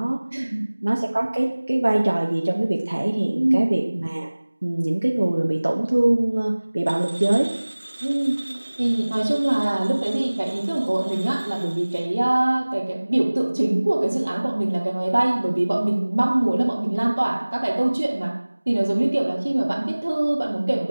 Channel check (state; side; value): inverted; both; correlation -1.00